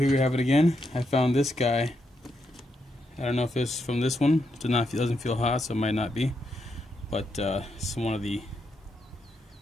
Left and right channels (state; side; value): normal; both; correlation 0.81